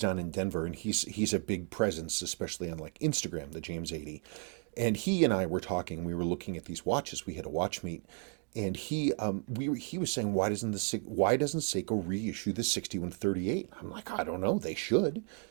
in Denver, and he's a big presence, especially on Instagram. The James 80, and he and I were talking. We were looking at these watches. We had a watch meet, and he was saying, why doesn't Seiko reissue the 6138? I'm like, I don't know. They should,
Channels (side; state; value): left; quieter; 39.3 dB